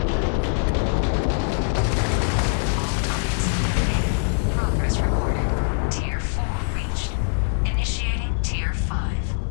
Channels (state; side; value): silent; right; digital silence